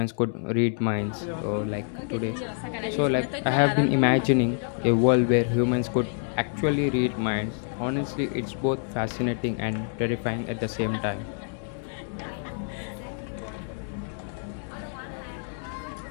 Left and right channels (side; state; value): right; silent; 56 dB below the other